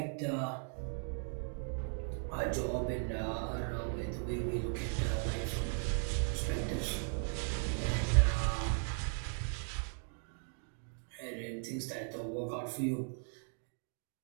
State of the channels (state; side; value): silent; left; 53 dB below the other